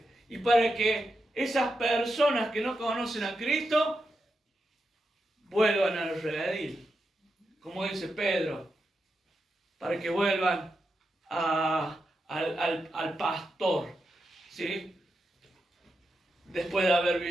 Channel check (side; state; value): both; normal; correlation 0.87